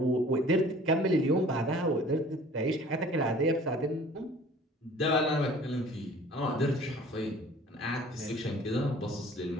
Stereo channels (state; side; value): normal; both; correlation 0.49